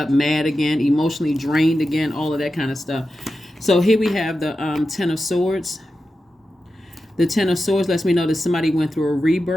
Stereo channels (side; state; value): both; normal; correlation 0.91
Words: mad again, emotionally drained again, all of that kind of stuff. So here we have the 10 of Swords. The 10 of Swords lets me know that somebody went through a